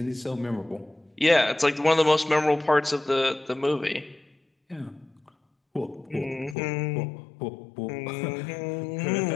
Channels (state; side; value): drops out; right; at 6.6 s